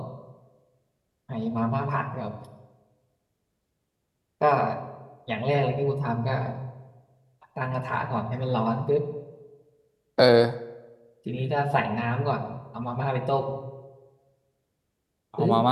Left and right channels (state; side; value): identical; both; correlation 1.00